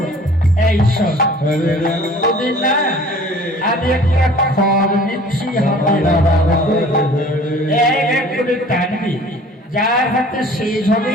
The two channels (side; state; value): both; normal; correlation 0.49